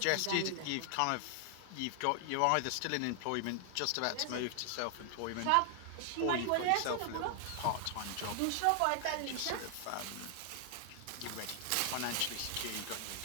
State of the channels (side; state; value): both; different; correlation 0.00